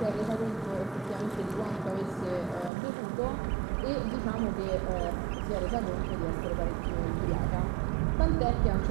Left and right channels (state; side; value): drops out; left; at 2.7 s